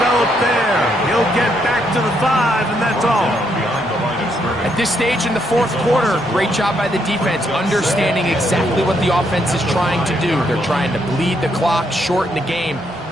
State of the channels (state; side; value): normal; both; correlation 0.75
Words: there. He'll get back to the 5, and that's all. At this stage in the 4th quarter, great job by the defense, understanding exactly what the offense is trying to do. They're trying to bleed the clock, shorten the game.